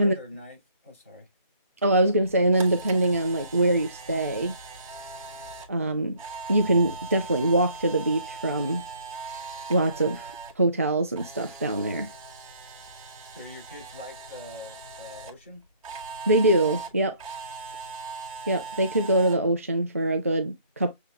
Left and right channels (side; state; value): both; inverted; correlation -0.61